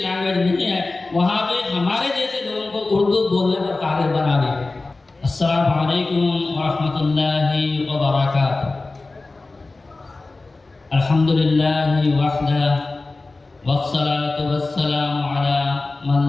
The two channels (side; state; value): right; quieter; 3.4 dB